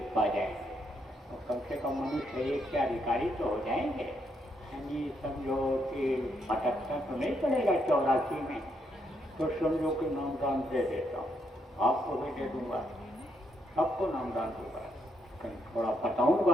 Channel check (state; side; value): normal; both; correlation 0.77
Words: पा जाएंगे, और कम से कम मनुष्य शरीर के अधिकारी तो हो जाएंगे। यानी समझो कि भटकता तो नहीं पड़ेगा 84 में, तो समझो कि नामदान दे देता हूँ, आपको भी दे दूंगा, सबको नामदान दूंगा, थोड़ा